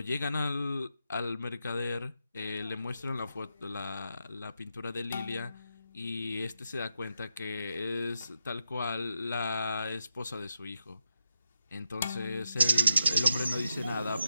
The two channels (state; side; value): inverted; both; correlation -0.85